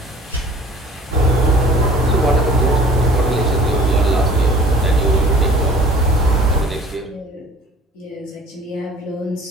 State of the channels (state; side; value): normal; both; correlation 0.49